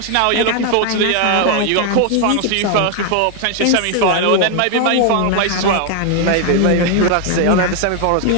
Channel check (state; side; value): different; both; correlation 0.00